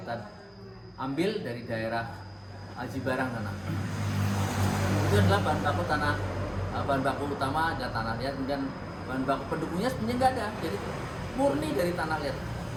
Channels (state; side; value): identical; both; correlation 1.00